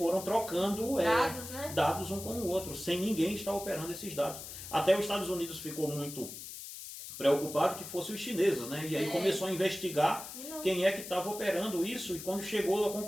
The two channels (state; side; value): noise; left; hiss, 11 dB below the sound